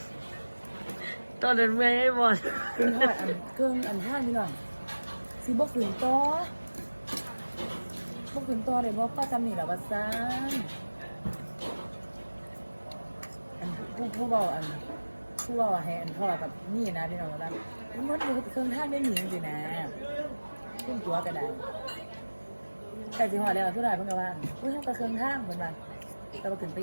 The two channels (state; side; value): inverted; both; correlation -1.00